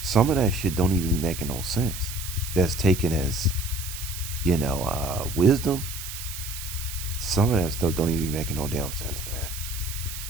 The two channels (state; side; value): noise; right; hiss, 9 dB below the sound